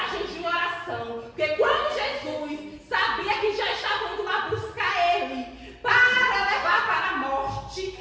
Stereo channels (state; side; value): identical; both; correlation 1.00